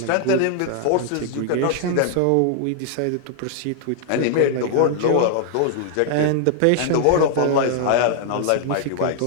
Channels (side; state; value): both; different; correlation 0.00